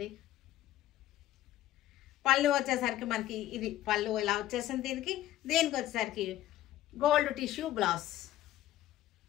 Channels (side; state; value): right; quieter; 13.8 dB